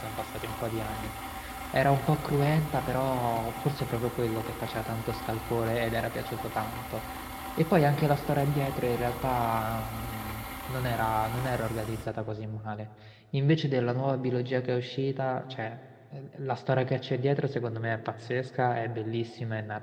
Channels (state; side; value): identical; both; correlation 1.00